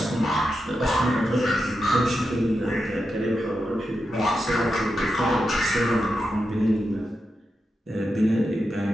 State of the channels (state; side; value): normal; both; correlation 0.88